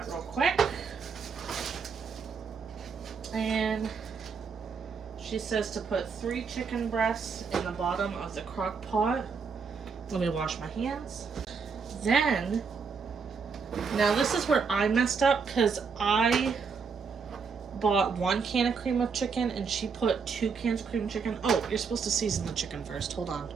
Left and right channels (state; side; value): quieter; left; 5.5 dB